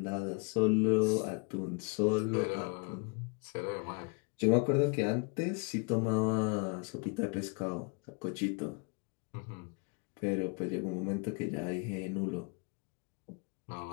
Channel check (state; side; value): quieter; right; 33.3 dB